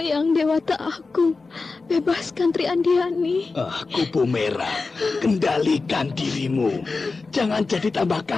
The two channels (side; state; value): right; quieter; 4.0 dB